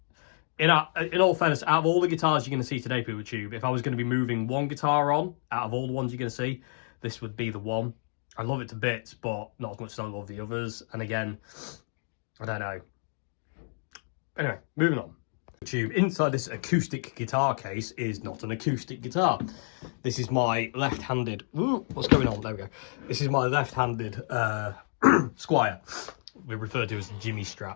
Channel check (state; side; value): silent; right; 58 dB below the other